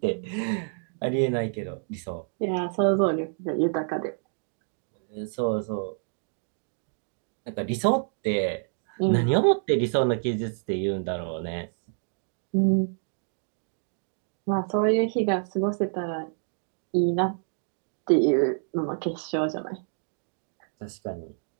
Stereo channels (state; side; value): silent; left; 59 dB below the other